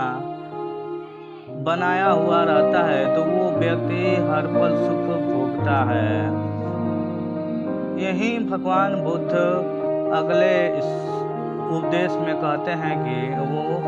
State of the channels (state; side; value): identical; both; correlation 1.00